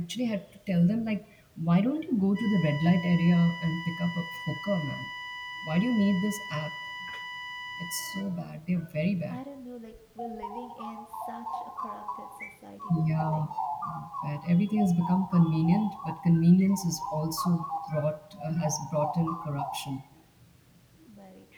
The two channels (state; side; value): identical; both; correlation 1.00